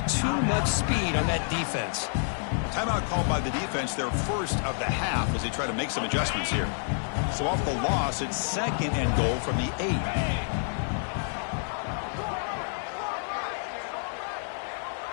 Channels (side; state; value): right; silent; 59 dB below the other